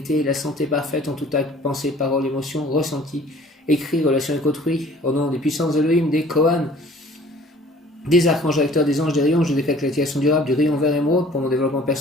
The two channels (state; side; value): normal; both; correlation 0.52